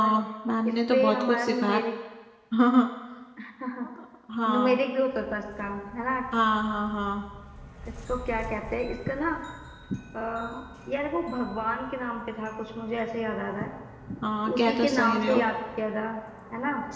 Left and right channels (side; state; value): both; identical; correlation 1.00